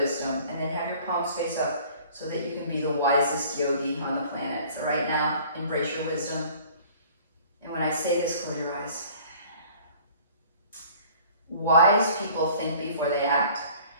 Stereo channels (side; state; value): both; inverted; correlation -0.51